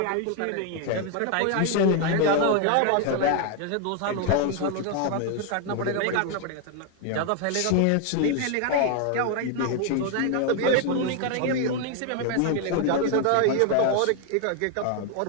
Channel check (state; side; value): different; both; correlation 0.01